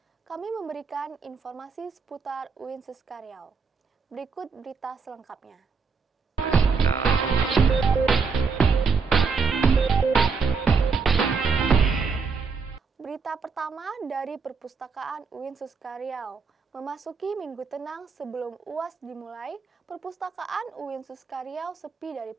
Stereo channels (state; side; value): quieter; left; 4.7 dB